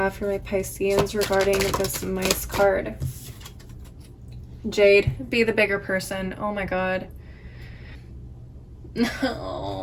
for my Pisceans regarding this mice card? Jade, be the bigger person. Oh my God.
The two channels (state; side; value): identical; both; correlation 1.00